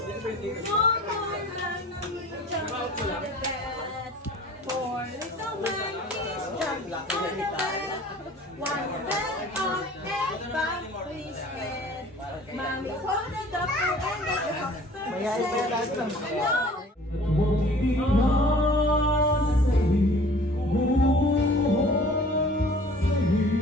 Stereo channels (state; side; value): normal; both; correlation 0.49